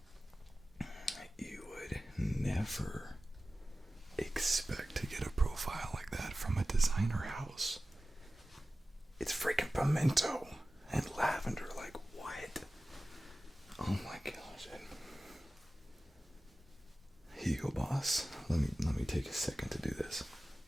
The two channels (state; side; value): normal; both; correlation 0.96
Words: You would never expect to get a profile like that from a designer house? It's freaking pimento and lavender. Like, what? Oh my gosh. Hugo Boss. Let me take a second to do this.